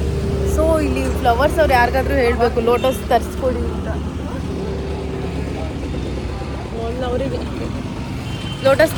ಸೊ ಇಲ್ಲಿ ಫ್ಲವರ್ಸ್ ಅವ್ರು ಯಾರಿಗಾದ್ರೂ ಹೇಳಬೇಕು ಲೋಟಸ್ ತರಿಸ್ಕೊಡಿ ಅಂತ. ಲೋಟಸ್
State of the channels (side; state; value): both; identical; correlation 1.00